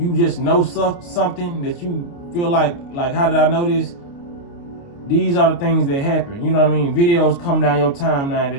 just know something that you feel like how did I know this? These are the things that happen. You know what I mean? Videos come down your timeline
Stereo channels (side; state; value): right; late; 29 ms